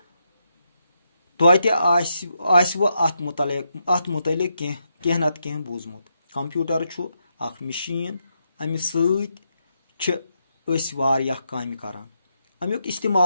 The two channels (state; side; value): inverted; both; correlation -0.82